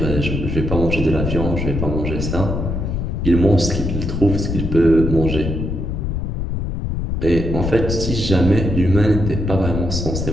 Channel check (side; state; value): left; noise; rumble, 2 dB below the sound